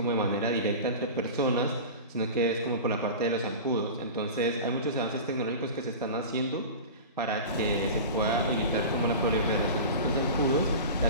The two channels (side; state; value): both; inverted; correlation -0.31